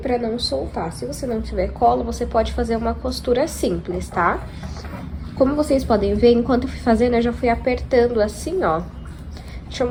não soltar. Se você não tiver cola, você pode fazer uma costura simples, tá? Como vocês podem ver, enquanto eu fui fazendo, eu já fui apertando assim, ó. Deixa eu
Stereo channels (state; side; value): identical; both; correlation 1.00